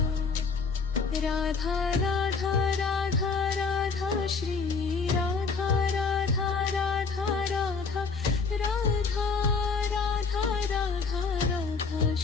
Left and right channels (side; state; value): right; quieter; 4.8 dB